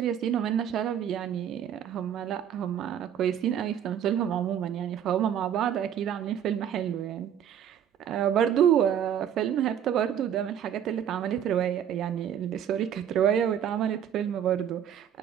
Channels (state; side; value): quieter; left; 9.4 dB